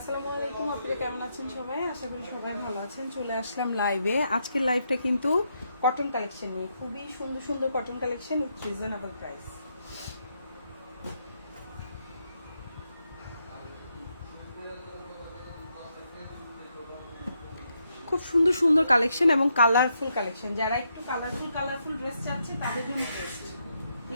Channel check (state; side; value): inverted; both; correlation -0.80